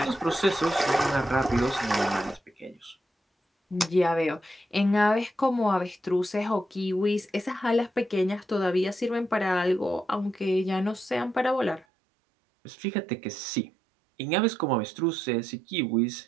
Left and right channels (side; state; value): left; drops out; at 11.9 s